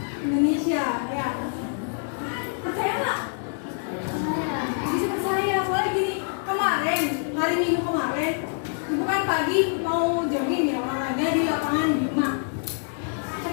Indonesia, ya. Percaya nggak? Bisa percaya, soalnya gini, kemarin, hari Minggu kemarin, ibu kan pagi mau jogging ya, olahraga di lapangan Bima.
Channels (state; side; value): silent; right; 61 dB below the other